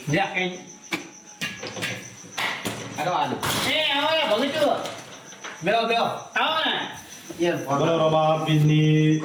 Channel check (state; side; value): identical; both; correlation 1.00